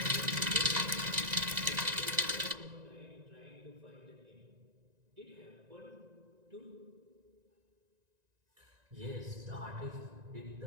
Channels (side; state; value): left; late; 1.9 ms